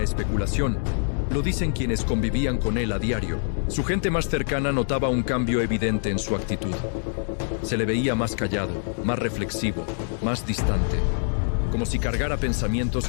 especulación, lo dicen quienes convivían con él a diario. Su gente más cercana notaba un cambio evidente en su actitud. Se le veía más callado, más reflexivo, más distante, como si cargara pensamientos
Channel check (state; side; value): silent; right; digital silence